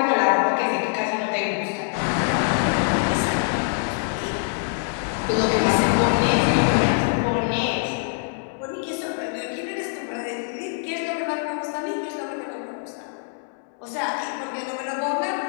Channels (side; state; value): right; silent; 62 dB below the other